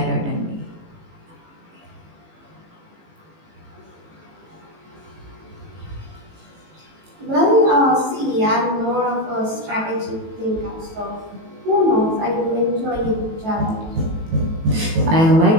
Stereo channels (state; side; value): late; left; 18 ms